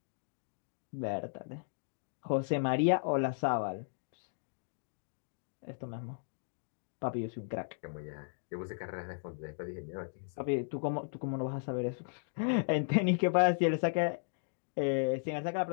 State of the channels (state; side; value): silent; right; digital silence